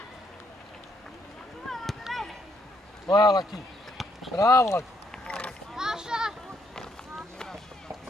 Moja Laki. Bravo, Laki.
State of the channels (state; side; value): normal; both; correlation 0.73